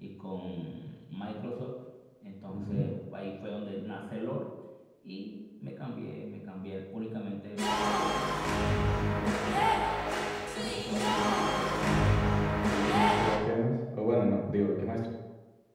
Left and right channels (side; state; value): both; identical; correlation 1.00